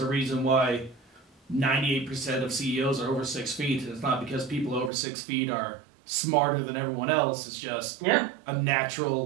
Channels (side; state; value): left; drops out; at 4.9 s